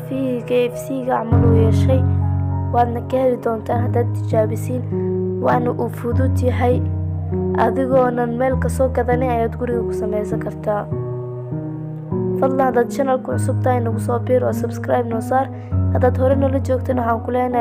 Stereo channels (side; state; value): both; identical; correlation 1.00